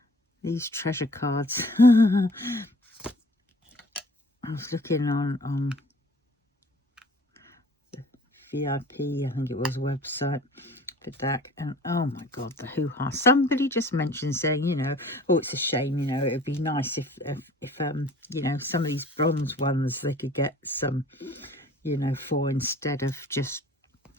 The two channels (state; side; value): normal; both; correlation 0.49